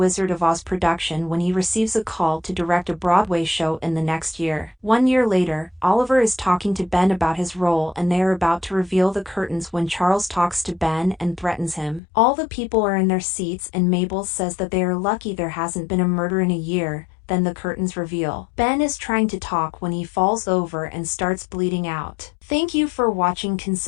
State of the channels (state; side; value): drops out; right; at 12.0 s